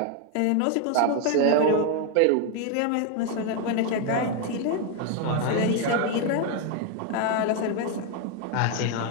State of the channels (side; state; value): both; different; correlation 0.01